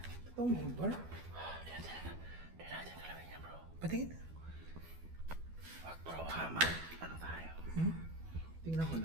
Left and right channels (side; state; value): left; late; 12 ms